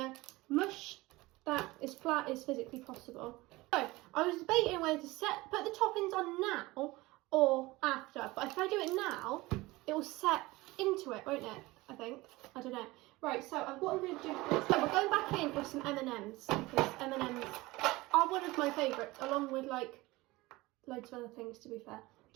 to mush that as flat as physically possible. So I was debating whether to put the toppings on now or after. But if I do it now, it will set into it, won't it? I think. I don't know. Right, so what I'm going to do is, so we're going back in with some M&Ms, because M&Ms are one of my favourites, along with like loads of other things, to be fair.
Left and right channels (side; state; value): left; quieter; 20.6 dB